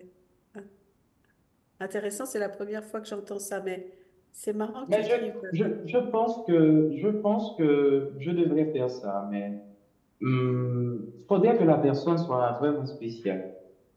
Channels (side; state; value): both; identical; correlation 1.00